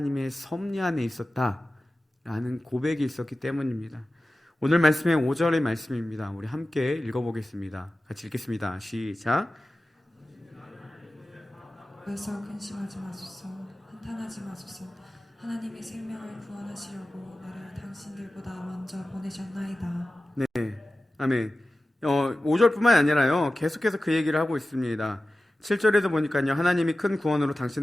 섭리 안에 있었다라는 고백이 있었기 때문입니다. 오늘 말씀의 5절의 말씀입니다. 우리 함께 읽어보겠습니다. 같이 읽겠습니다. 시작. 그래서 근심하지 마소서, 한탄하지 마소서. 하나님이 생명을 구원하시려고 나를 당신들보다 먼저 보내셨나이다. 네, 아멘. 5절뿐만 아니라요, 계속해서 그 얘기를 하고 있습니다. 7절에도 보니까요, 하나님이 큰 구원으로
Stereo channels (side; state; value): both; normal; correlation 0.95